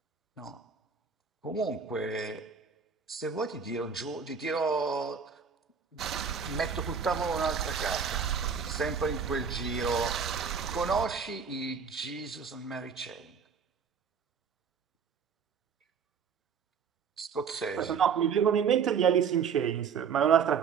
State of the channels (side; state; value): left; quieter; 6.3 dB